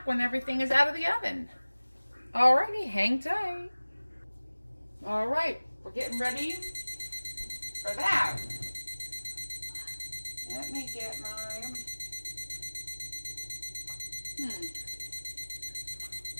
when everything is out of the oven. Alrighty, hang tight. Alright, we're getting ready for that. Let me get my...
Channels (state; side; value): inverted; both; correlation -1.00